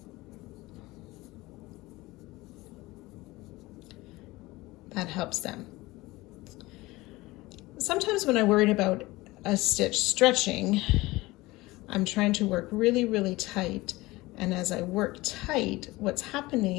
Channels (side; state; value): right; quieter; 20.3 dB